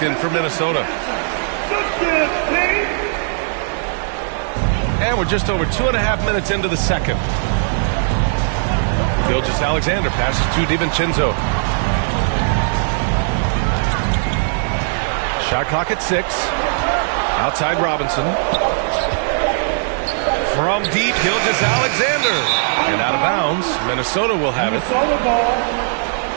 in for Minnesota. And we're just over 2.5 minutes into the second. Gilgeous-Alexander passes to DiVincenzo. Shot clock at 6. Outside Robinson. From deep, Gilgeous-Alexander. And out of bounds, Minnesota will have it.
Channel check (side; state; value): left; silent; 56 dB below the other